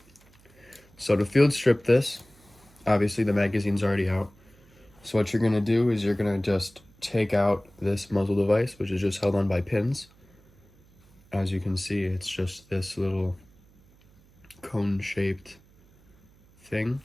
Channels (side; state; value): right; noise; hum, 29 dB below the sound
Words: So to field strip this, obviously the magazine's already out. So what you're gonna do is you're gonna just take out this muzzle device, which is just held on by pins. As you can see, it's just this little cone-shaped thing.